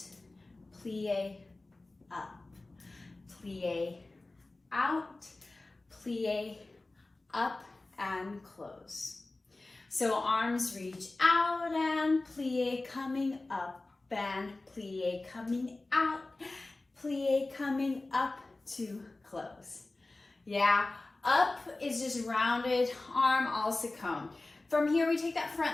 plie, up, plie, out, plie, up, and close. So arms reach out and plie coming up, and plie coming out, plie coming up to close. Yeah, up is just rounded, arm also come. From here, we take that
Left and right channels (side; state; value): right; quieter; 3.1 dB